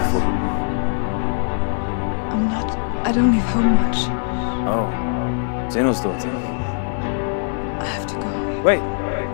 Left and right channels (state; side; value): silent; right; digital silence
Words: I don't leave home much. Oh, Zeno's daughter. I have to go. Wait.